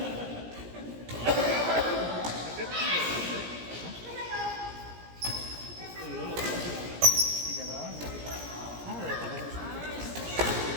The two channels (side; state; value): left; late; 17 ms